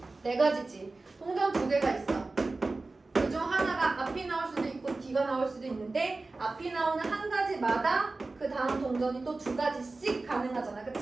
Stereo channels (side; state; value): left; quieter; 3.4 dB